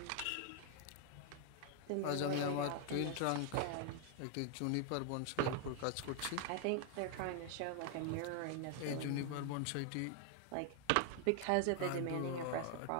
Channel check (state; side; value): different; both; correlation 0.00